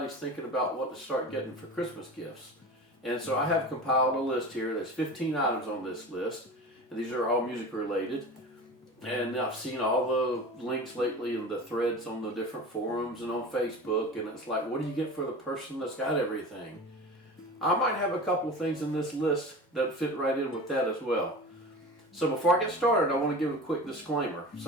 thinking about what to start getting for Christmas gifts. And so I have compiled a list here. There's 15 items on this list, and these are all music related. And I've seen all the links lately in the threads on the different forums and on Facebook, and it's like, what do you get for the person that's got everything? I might have a couple things in this list that fit right in with that as well. So before I get started, I want to give a quick disclaimer.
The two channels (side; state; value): both; normal; correlation 0.33